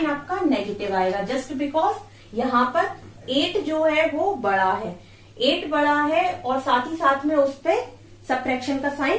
आपका नेगेटिव आएगा जस्ट बिकॉज यहाँ पर 8 जो है वो बड़ा है, 8 बड़ा है और साथ ही साथ में उस पे सबट्रैक्शन का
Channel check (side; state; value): both; identical; correlation 1.00